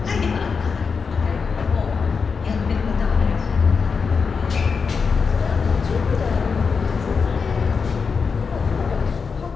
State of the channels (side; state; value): right; quieter; 5.4 dB